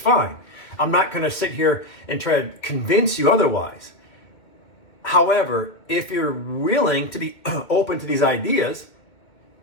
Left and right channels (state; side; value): late; right; 2.2 ms